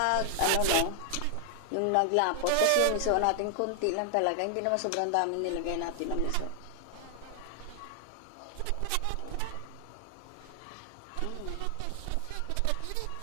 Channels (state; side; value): different; both; correlation 0.00